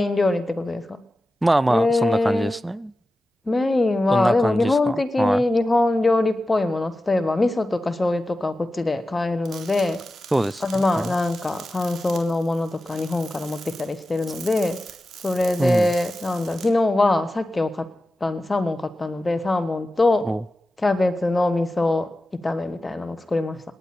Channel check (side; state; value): both; normal; correlation 0.94